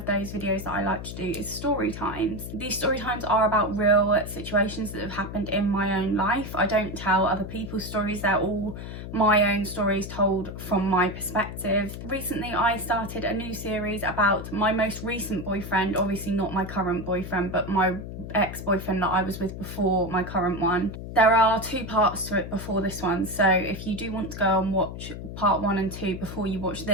those videos that I like to do is story times. These story times are about real situations that have happened in my own life. I don't tell other people's stories, they're all my own stories told from my perspective. Recently I started a new series about my most recent boyfriend, obviously not my current boyfriend, but my ex-boyfriend that I was with before my current one. There are two parts to it before this one, so if you do want to go and watch part 1 and 2 before you watch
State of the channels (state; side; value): noise; left; hum, 9 dB below the sound